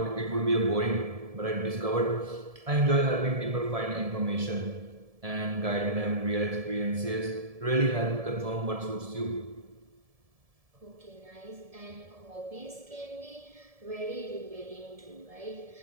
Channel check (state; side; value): late; left; 1.7 ms